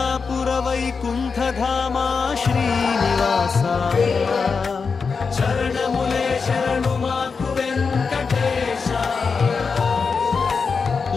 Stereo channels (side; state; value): right; quieter; 5.1 dB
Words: वैकुण्ठधाम श्रीनिवास चरणमुले शरणुमाकु वेङ्कटेश